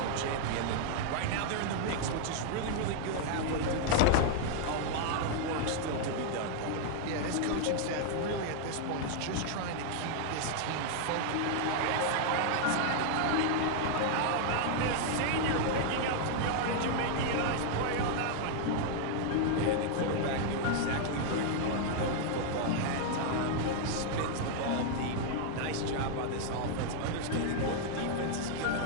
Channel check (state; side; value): different; both; correlation 0.00